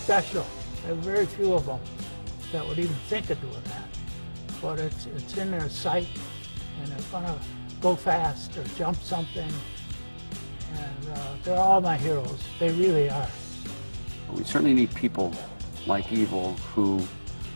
There are very few of them that would even think of doing that. But it's in their sight, and they're gonna go fast or jump something. And they're all my heroes. They really are. We certainly need people like Evel who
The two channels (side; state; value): both; inverted; correlation -1.00